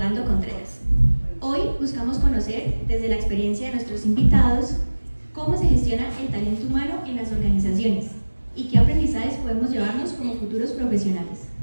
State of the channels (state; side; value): inverted; both; correlation -1.00